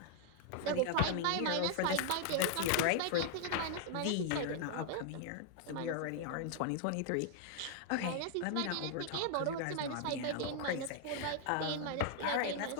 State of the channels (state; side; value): different; both; correlation 0.00